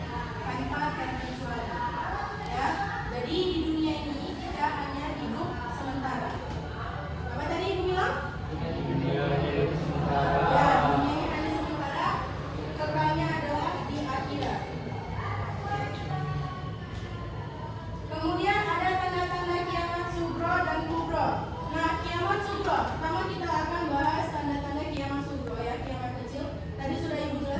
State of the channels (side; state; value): both; identical; correlation 1.00